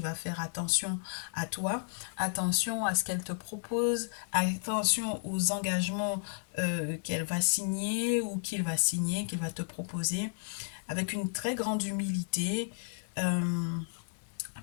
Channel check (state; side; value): silent; right; digital silence